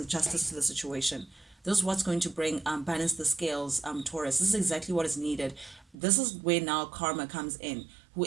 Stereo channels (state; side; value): drops out; left; at 6.0 s